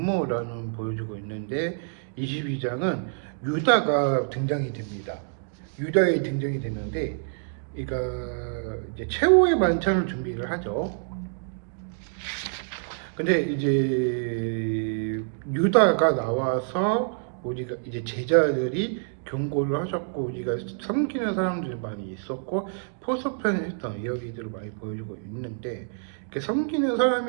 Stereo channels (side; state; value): left; silent; digital silence